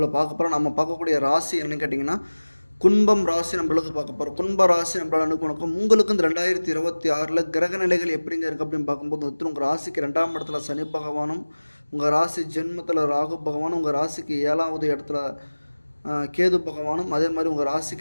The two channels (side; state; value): both; inverted; correlation -1.00